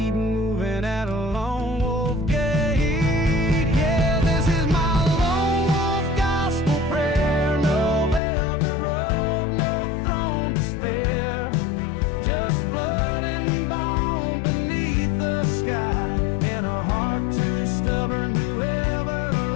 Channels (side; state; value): right; drops out; at 8.2 s